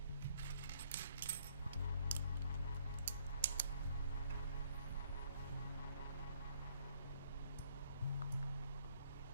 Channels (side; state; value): both; inverted; correlation -0.65